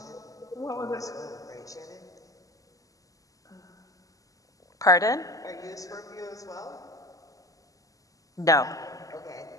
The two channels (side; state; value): right; late; 0.17 ms